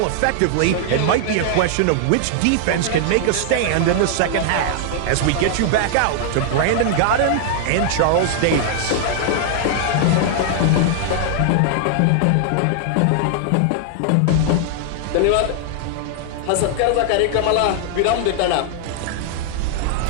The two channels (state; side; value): different; both; correlation 0.00